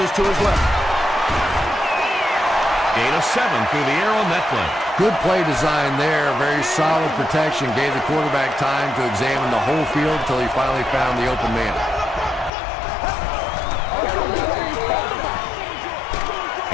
to his left. Gain of 7 through the air on that play. Good play design there. Very solid protection. Gave the quarterback time to examine the whole field until he finally found the open man.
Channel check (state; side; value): drops out; right; at 12.5 s